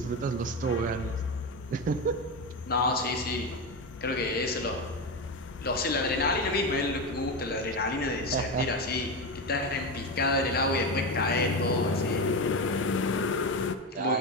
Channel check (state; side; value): normal; both; correlation 0.17